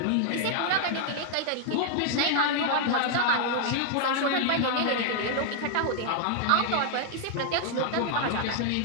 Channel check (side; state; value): both; different; correlation 0.00